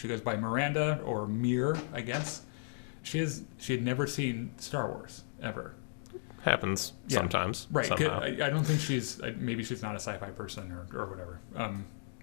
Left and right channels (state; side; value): silent; right; digital silence